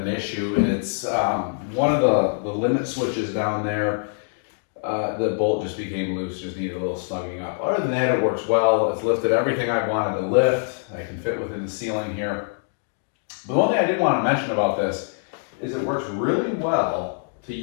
issue, it's one of the limit switches down there. The bolt just became loose, just needed a little snugging up. Other than that, it works well. It's lifted everything I wanted to lift. I can fit within the ceiling here. But the one thing I did want to mention about this is it works really well to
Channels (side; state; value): right; silent; digital silence